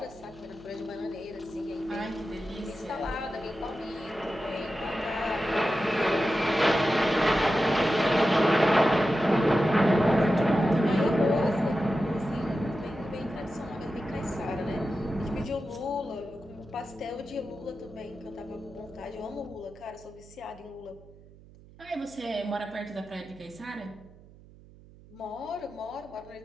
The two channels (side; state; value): right; noise; hum, 22 dB below the sound